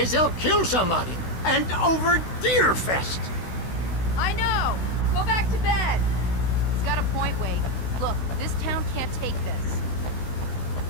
they'll kill somebody. And over Deerfest. I know. Go back to bed. He's got a point, Wade. Look, this town can't take this.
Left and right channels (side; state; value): right; late; 16 ms